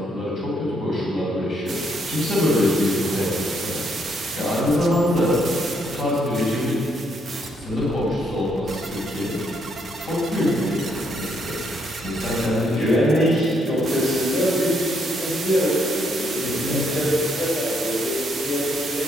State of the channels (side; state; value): both; normal; correlation 0.73